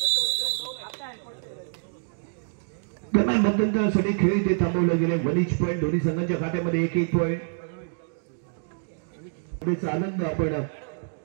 दरम्यान मध्यंतरासाठी खेळ इथे थांबवलं गेले. 1 पॉईंट दोन्ही संघांच्या खात्यामध्ये 1 पॉईंट. आनंद आपण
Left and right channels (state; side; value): silent; left; digital silence